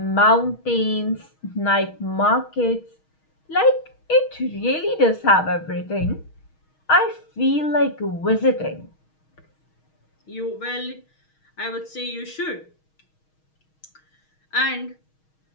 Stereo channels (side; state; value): right; late; 6.4 ms